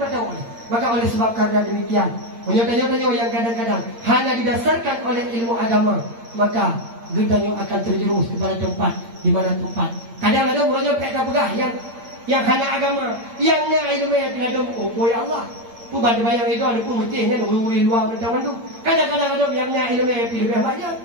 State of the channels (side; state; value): left; late; 8.8 ms